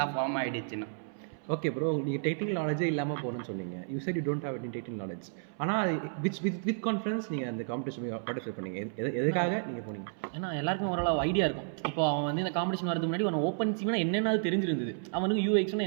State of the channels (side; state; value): left; silent; 57 dB below the other